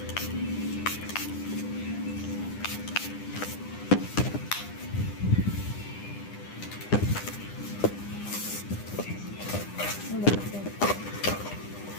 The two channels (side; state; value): right; late; 9.9 ms